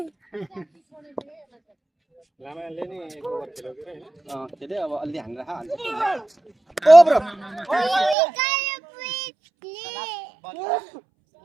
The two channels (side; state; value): left; drops out; at 8.2 s